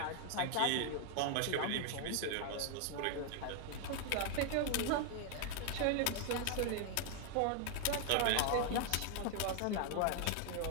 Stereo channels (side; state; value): both; different; correlation 0.00